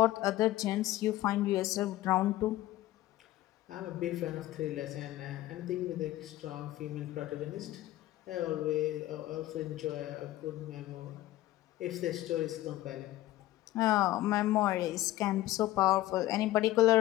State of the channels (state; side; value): quieter; right; 15.5 dB